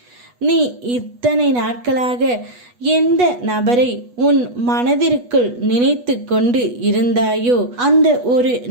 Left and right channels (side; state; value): left; late; 8.2 ms